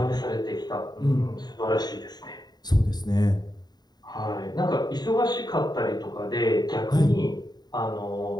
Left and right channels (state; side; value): late; right; 0.20 ms